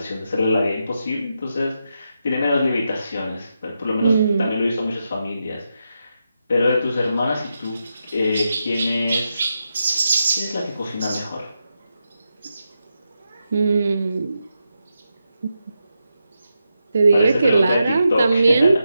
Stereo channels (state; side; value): inverted; both; correlation -0.86